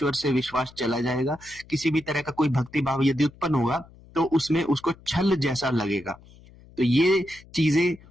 से विश्वास चला जाएगा। किसी भी तरह का कोई भक्ति भाव यदि उत्पन्न होगा तो उसमें उसको छल जैसा लगेगा। तो ये चीजें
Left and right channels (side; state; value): left; noise; hum, 24 dB below the sound